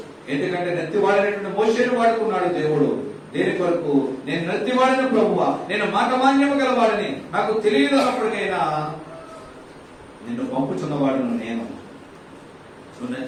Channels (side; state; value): both; identical; correlation 1.00